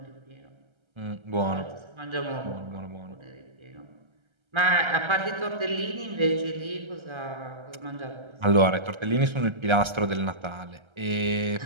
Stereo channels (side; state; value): left; late; 1.3 ms